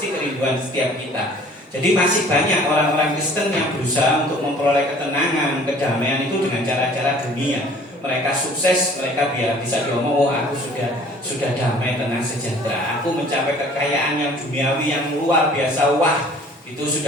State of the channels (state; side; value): normal; both; correlation 0.51